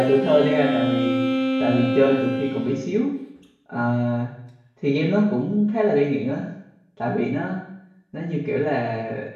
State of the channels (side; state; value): both; identical; correlation 1.00